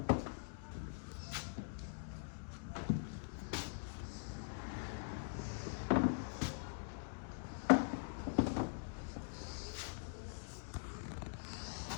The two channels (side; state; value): right; silent; digital silence